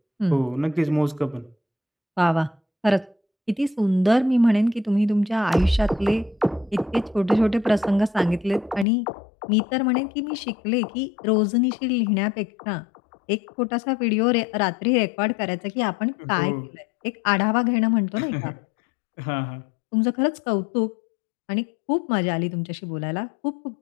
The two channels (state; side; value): drops out; right; at 8.8 s